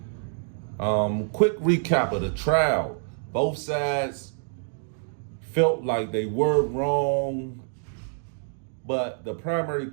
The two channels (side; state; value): left; silent; 60 dB below the other